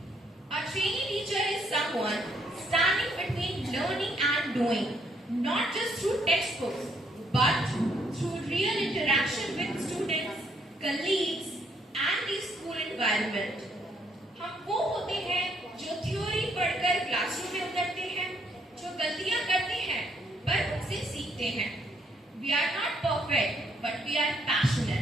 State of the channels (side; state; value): both; normal; correlation 0.70